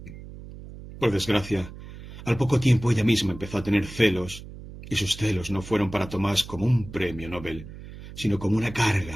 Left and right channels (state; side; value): noise; right; hum, 14 dB below the sound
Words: Por desgracia, al poco tiempo ella misma empezó a tener celos, y sus celos no fueron para Tomás como un premio Nobel, sino como una